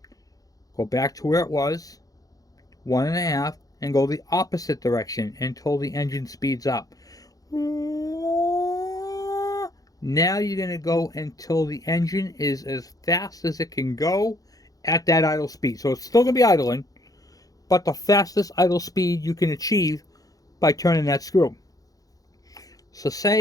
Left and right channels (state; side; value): late; right; 0.17 ms